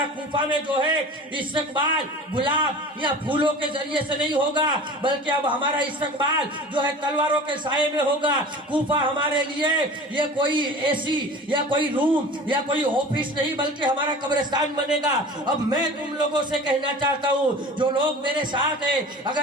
کوفہ میں جو ہے استقبال گلاب یا پھولوں کے ذریعے سے نہیں ہوگا، بلکہ اب ہمارا استقبال جو ہے تلواروں کے سائے میں ہوگا۔ کوفہ ہمارے لیے یہ کوئی اے سی یا کوئی روم یا کوئی آفس نہیں، بلکہ ہمارا قبرستان بنے گا۔ اب میں تم لوگوں سے کہنا چاہتا ہوں، جو لوگ میرے ساتھ ہیں،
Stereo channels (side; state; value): both; normal; correlation 0.39